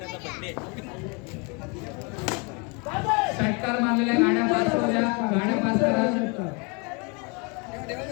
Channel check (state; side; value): quieter; right; 31.4 dB